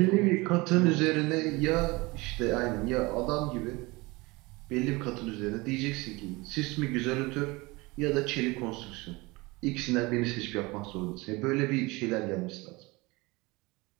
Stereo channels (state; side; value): quieter; left; 23.7 dB